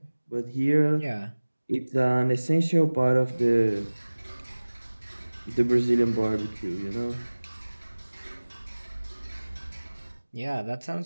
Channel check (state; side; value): inverted; both; correlation -1.00